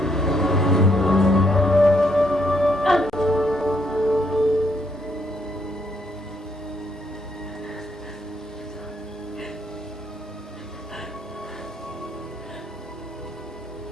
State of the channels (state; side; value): normal; both; correlation 0.73